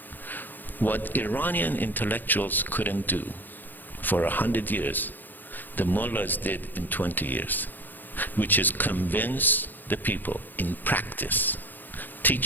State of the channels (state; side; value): late; right; 0.088 ms